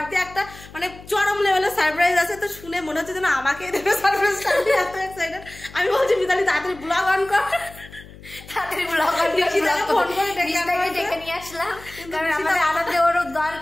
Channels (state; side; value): noise; left; hum, 19 dB below the sound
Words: একটা মানে চরম লেভেলের সারপ্রাইজ আছে। তো শুনে মনে হচ্ছে যেন আমাকে দেবে সারপ্রাইজটা, আমি এত এক্সাইটেড। আমি বলছি মিতালি তাড়াতাড়ি ব্লগ অন কর, তাড়াতাড়ি ব্লগ অন করে ফোন করে ডেকে নিয়ে আসলাম, কারণ আমাদের আনন্দে ওর